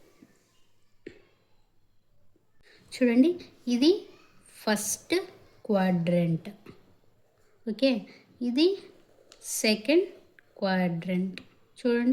చూడండి, ఇది ఫస్ట్ క్వాడ్రంట్. ఓకే, ఇది సెకండ్ క్వాడ్రంట్.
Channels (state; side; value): identical; both; correlation 1.00